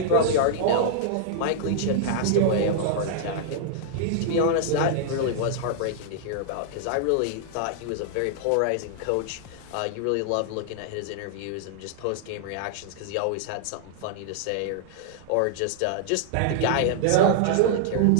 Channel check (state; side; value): different; both; correlation -0.01